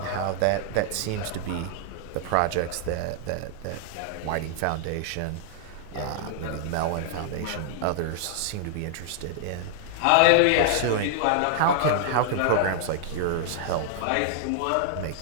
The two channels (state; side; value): different; both; correlation 0.00